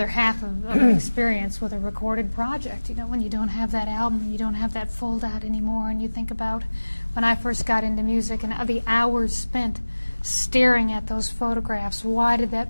half of an experience with a recorded project. When you don't have that album, you don't have that fold out anymore, and you think about when I first got into music and the hours spent staring at those photographs. Why did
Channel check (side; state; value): both; inverted; correlation -1.00